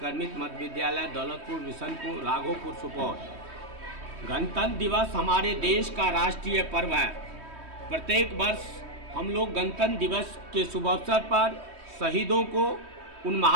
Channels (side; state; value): left; late; 3.2 ms